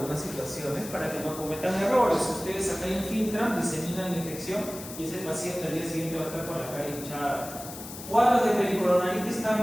situaciones para que no cometan errores. Ustedes acá infiltran, diseminan la infección y ese paciente al día siguiente va a estar con la cara hinchada. Cuadros de pericoronaritis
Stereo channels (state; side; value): noise; left; hiss, 12 dB below the sound